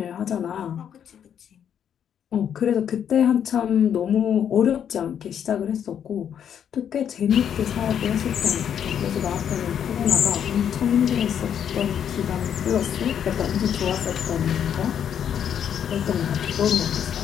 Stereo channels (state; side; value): quieter; right; 8.8 dB